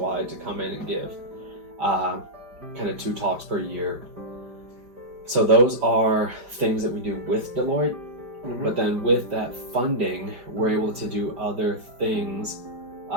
to come in and give kind of 2 talks per year. So those are things that we do with Deloitte. But then with that funding, we're able to do other things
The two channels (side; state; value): left; late; 5.0 ms